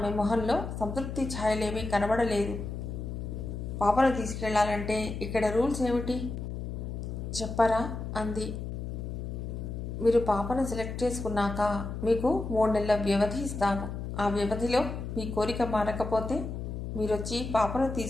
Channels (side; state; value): left; noise; hum, 6 dB below the sound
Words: మొహంలో సంతృప్తి ఛాయలేమీ కనబడలేదు. పాపను తీసుకెళ్లాలంటే ఇక్కడ రూల్స్ ఏమిటి చెప్పరా అంది. మీరు పాపను సెలెక్ట్ చేసుకున్నాక మీకు 3 నెలల వ్యవధి ఇస్తాము. ఆ వ్యవధిలో మీ కోరిక మారకపోతే మీరొచ్చి పాపను